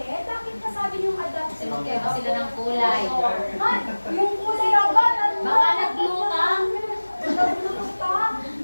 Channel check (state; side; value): inverted; both; correlation -1.00